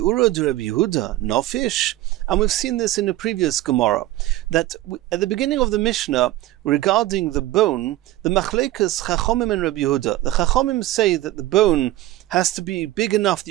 de Rabbi Yehuda, nofish. And we've seen this in a previous Gemara, that at the beginning of the Mishnah, regarding the bone, the Machlekas Chachomim and Rabbi Yehuda, the Chachomim say that the bone has to be big enough that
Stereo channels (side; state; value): left; quieter; 15.9 dB